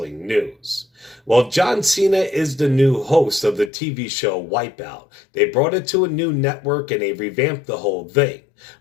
news. Well, John Cena is the new host of the TV show Wipeout. They brought it to a new network and they revamped the whole thing.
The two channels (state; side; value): drops out; right; at 3.7 s